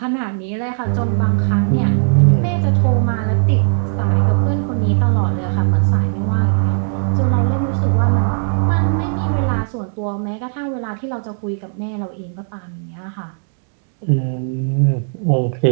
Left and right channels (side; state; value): left; silent; digital silence